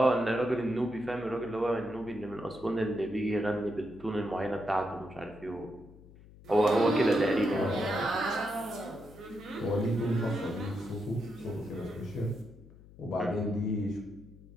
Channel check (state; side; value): noise; left; hum, 21 dB below the sound